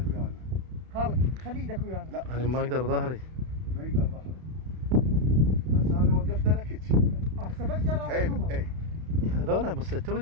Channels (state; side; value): late; left; 32 ms